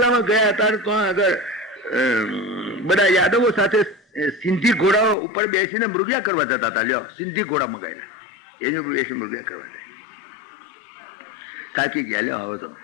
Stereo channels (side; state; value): right; drops out; at 5.2 s